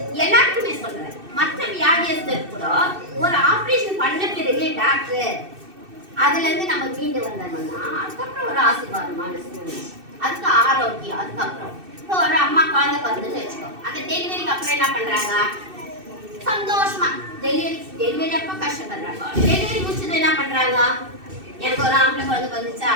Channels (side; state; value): left; late; 2.6 ms